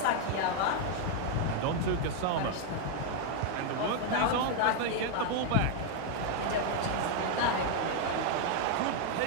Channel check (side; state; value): both; different; correlation 0.00